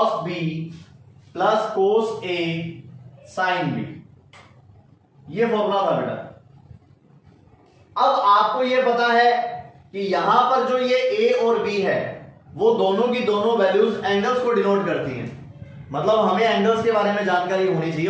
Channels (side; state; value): both; identical; correlation 1.00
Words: B plus cos A sine B. ये फॉर्मूला था बेटा। अब आपको ये पता है कि यहां पर जो ये ए और बी है वो दोनों की दोनों वैल्यूज एंगल्स को डिनोट करती हैं। मतलब हमें एंगल्स के बारे में जानकारी होनी चाहिए,